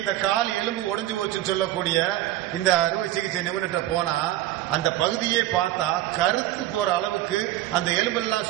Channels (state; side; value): quieter; left; 14.8 dB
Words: கால் எலும்பு உடைஞ்சு போச்சுன்னு சொல்லக்கூடிய இந்த அறுவை சிகிச்சை நிபுணர்கிட்ட போனா அந்த பகுதியே பார்த்தா கருத்து போற அளவுக்கு, அந்த எலும்பு எல்லாம்